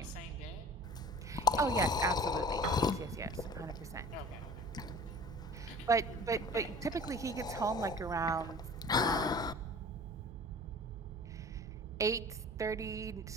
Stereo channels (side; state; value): both; normal; correlation 0.43